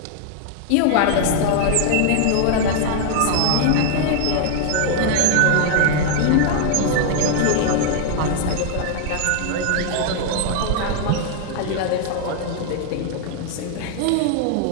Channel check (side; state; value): both; different; correlation 0.00